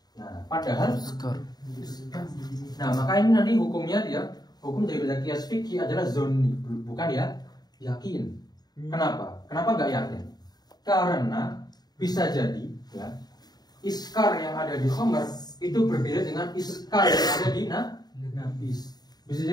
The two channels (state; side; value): late; right; 0.19 ms